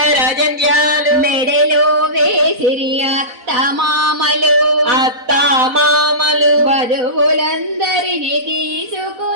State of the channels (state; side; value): late; left; 4.0 ms